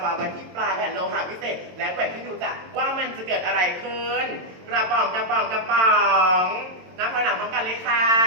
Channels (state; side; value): late; left; 22 ms